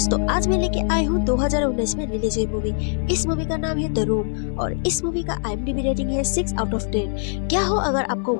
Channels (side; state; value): right; silent; 59 dB below the other